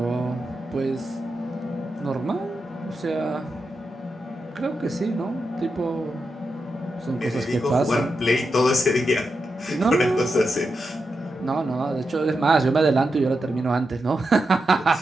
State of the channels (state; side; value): normal; both; correlation 0.88